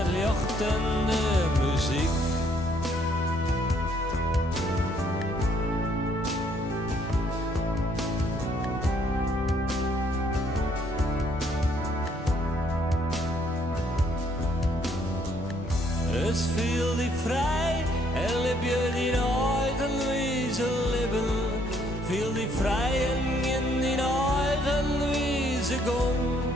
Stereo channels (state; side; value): normal; both; correlation 0.67